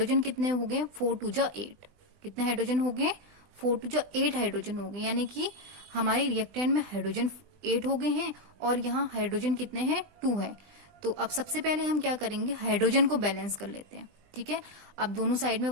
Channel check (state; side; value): late; left; 20 ms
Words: कितने हो गए 4 2 जा 8, कितने हाइड्रोजन हो गए 4 2 जा 8 हाइड्रोजन हो गए, यानी कि हमारे रिएक्टेंट में हाइड्रोजन 8 हो गए हैं और यहाँ हाइड्रोजन कितने हैं 2 है। तो अब सबसे पहले हम क्या करेंगे, हाइड्रोजन को बैलेंस कर लेते हैं। ठीक है, अब दोनों साइड में